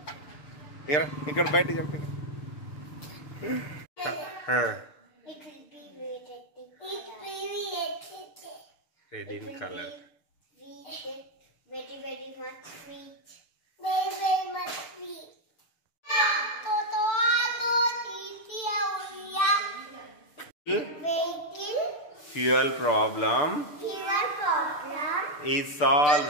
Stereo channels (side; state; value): right; late; 6.7 ms